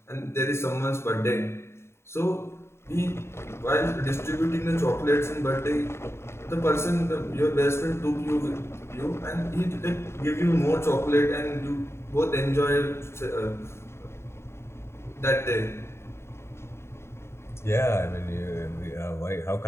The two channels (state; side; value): late; right; 0.12 ms